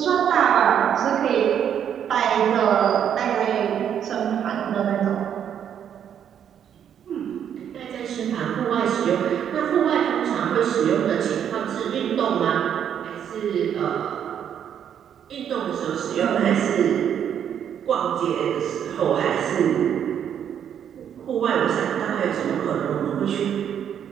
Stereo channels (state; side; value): quieter; left; 9.0 dB